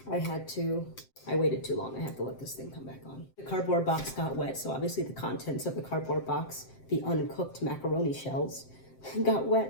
I waited too long. I had to let this thing come back on. The cardboard box got wet, so obviously the contents of the cardboard box, the uncooked macaroni shells, got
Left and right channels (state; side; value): late; right; 7.6 ms